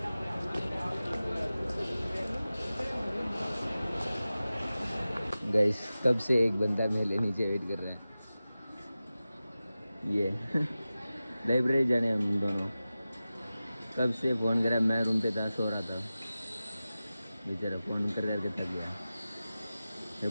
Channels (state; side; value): inverted; both; correlation -0.95